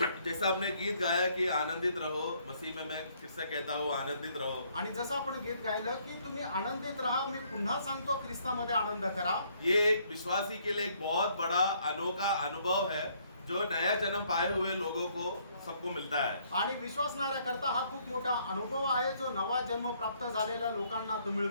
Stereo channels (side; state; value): both; inverted; correlation -0.67